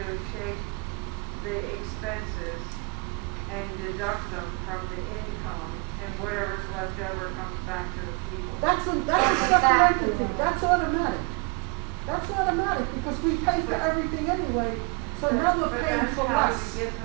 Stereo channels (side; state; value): left; quieter; 29.4 dB